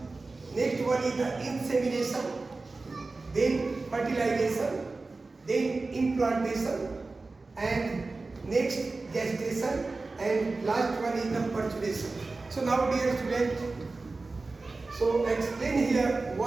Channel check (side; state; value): left; quieter; 3.6 dB